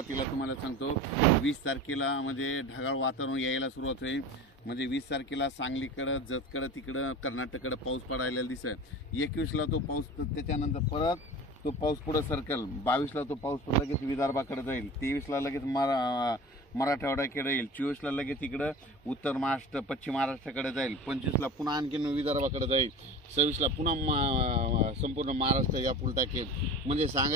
तुम्हाला सांगतो 20 तारखेला म्हणजे ढगाळ वातावरण यायला सुरुवात होईल। म्हणजे 20 तारखेला सांगलीकडं जतकडं तिकडं कर्नाटककडं पाऊस पडायला दिसत। 21ला तो पाऊस, त्याच्यानंतर परत तो पाऊस पुढे सरकल। 22ला तो पाऊस लगेच विदर्भाकडे जाईल। 23ला लगेच मराठवाड्याकडे येईल। 24ला लगेच इकडं उत्तर महाराष्ट्र पश्चिम महाराष्ट्राकडे जाईल। 25ला पुन्हा आणखीन विदर्भाकडे जाईल। 26ला पुन्हा संपूर्ण महाराष्ट्र या टाकेल। म्हणजे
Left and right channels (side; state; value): both; normal; correlation 0.35